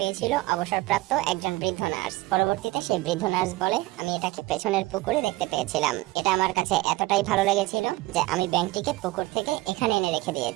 অবসরপ্রাপ্ত একজন বৃদ্ধ নার্স। পরবর্তীতে সেই বৃদ্ধ নার্স বলে, আমি এটাকে পেছনের পুকুরে দেখতে পেয়েছিলাম। এটা আমার কাছে এতটাই ভালো লেগেছিল যে আমি ব্যাঙটিকে পুকুর থেকে এখানে এনে রেখে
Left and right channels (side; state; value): left; quieter; 19.7 dB